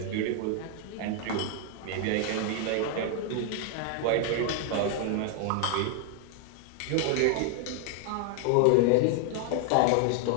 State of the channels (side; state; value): both; different; correlation 0.00